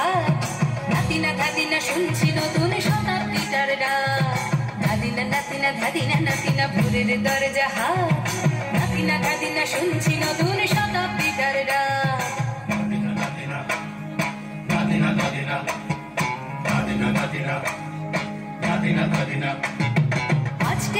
নাতিনা ধাদিনা শুনছি নতুন শতাব্দীটার ডাক। ধাদিনা নাতিনা ধাদিনা নাতিনা ভোরের দরজাহাট, নাতিনা ধাদিনা শুনছি নতুন শতাব্দীটার ডাক।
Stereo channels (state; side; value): identical; both; correlation 1.00